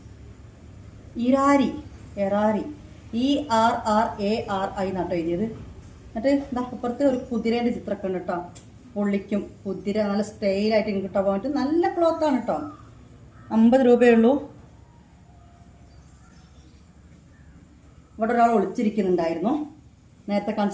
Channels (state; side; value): identical; both; correlation 1.00